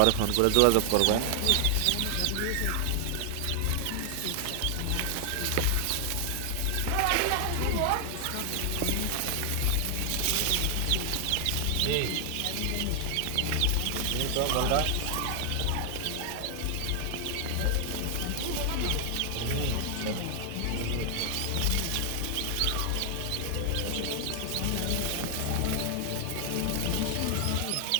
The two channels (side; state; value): both; different; correlation 0.00